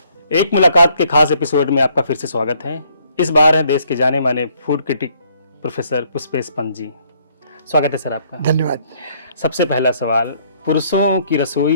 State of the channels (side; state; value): both; inverted; correlation -0.66